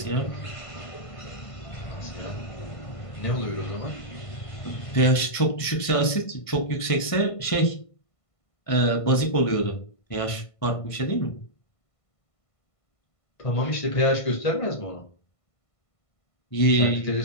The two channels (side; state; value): right; late; 1.5 ms